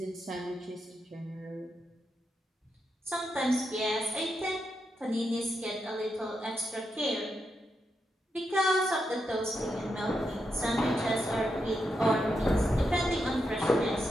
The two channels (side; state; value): both; normal; correlation 0.84